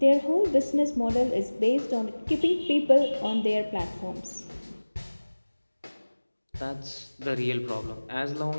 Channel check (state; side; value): inverted; both; correlation -1.00